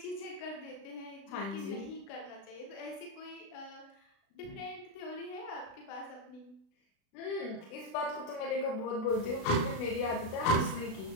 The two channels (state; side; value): late; right; 36 ms